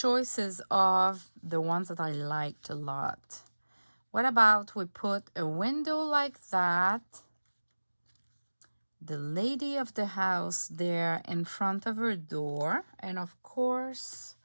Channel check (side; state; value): both; inverted; correlation -1.00